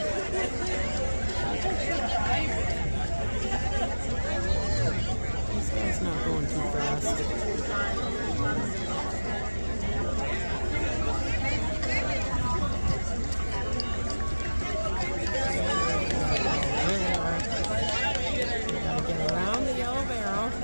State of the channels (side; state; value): both; inverted; correlation -1.00